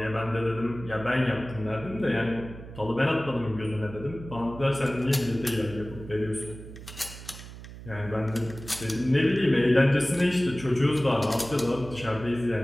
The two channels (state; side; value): noise; right; hum, 14 dB below the sound